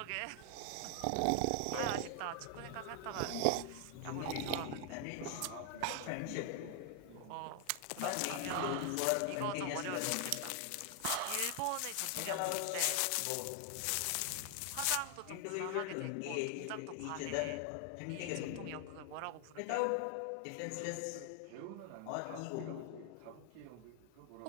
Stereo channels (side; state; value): both; different; correlation 0.00